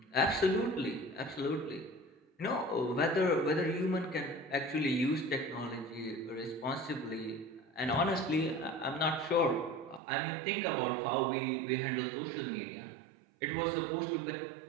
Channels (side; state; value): left; drops out; at 10.0 s